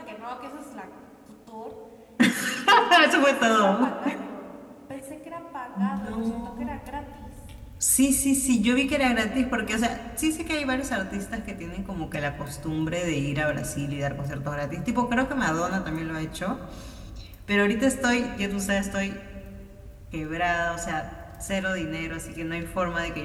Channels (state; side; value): identical; both; correlation 1.00